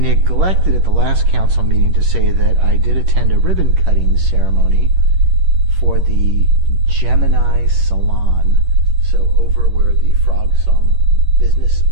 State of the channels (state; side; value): late; left; 11 ms